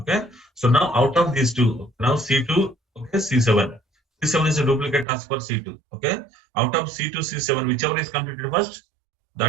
So now out of these two, now C2, okay, C7. C7 is a duplicate task for C2. Okay. Out of C2, C7, whichever is completed first,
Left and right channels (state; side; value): drops out; left; at 5.1 s